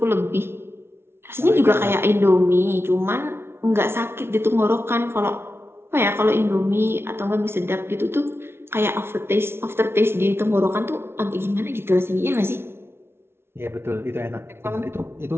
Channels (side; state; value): left; late; 0.12 ms